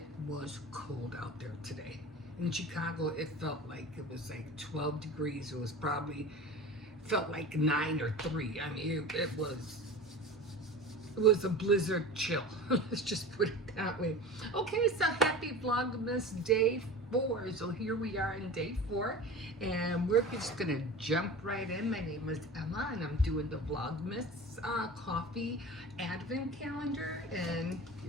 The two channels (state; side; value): normal; both; correlation 0.34